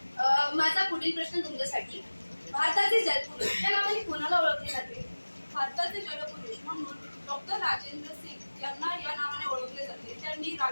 माझा पुढील प्रश्न तुमच्यासाठी, भारताचे जलपुरुष या नावाने कोणाला ओळखले जाते? भारताचे जलपुरुष म्हणून डॉक्टर राजेंद्र सिंग यांना या नावाने ओळखले जाते. त्यांनी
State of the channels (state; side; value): inverted; both; correlation -1.00